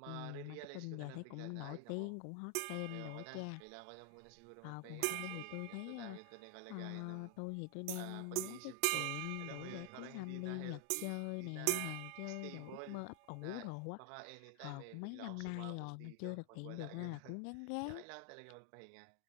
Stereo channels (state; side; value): different; both; correlation 0.00